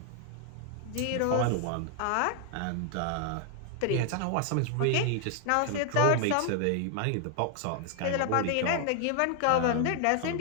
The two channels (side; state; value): both; different; correlation 0.00